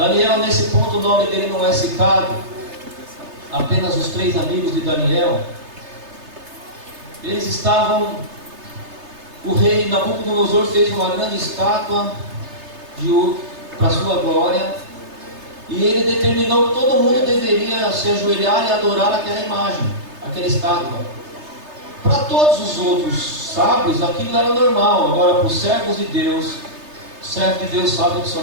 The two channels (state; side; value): late; left; 3.3 ms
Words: nesse ponto o nome dele não é citado, apenas os 3 amigos de Daniel. Eles estavam, o rei Nabucodonosor fez uma grande estátua de ouro para sua glória, e ele determinou que todo mundo deveria se ajoelhar e adorar aquela imagem, aquela estátua. Para todos os outros sábios aquilo era normal, agora para os servos de Deus, o servo de Deus sabe que só